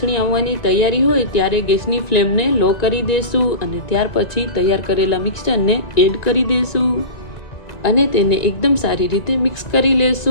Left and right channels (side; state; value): right; late; 2.0 ms